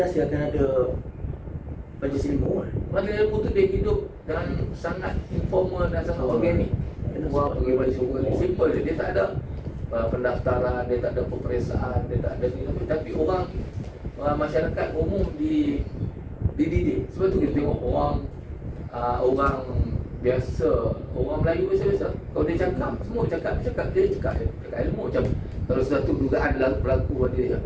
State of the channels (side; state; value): both; identical; correlation 1.00